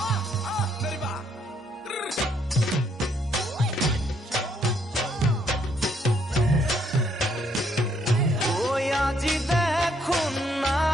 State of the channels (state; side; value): normal; both; correlation 0.70